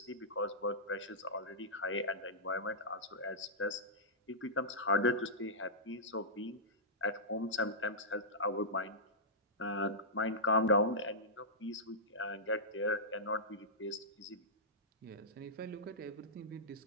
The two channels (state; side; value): normal; both; correlation -0.14